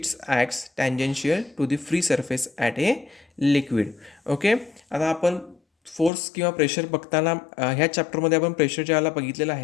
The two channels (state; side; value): drops out; right; at 6.1 s